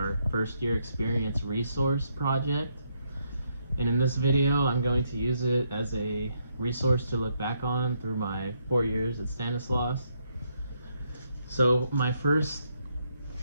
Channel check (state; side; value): inverted; both; correlation -0.76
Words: first year experience resource project. And in this video, I'm going to use it as a resource to look back on through my 4 years at Stanislaus. So my first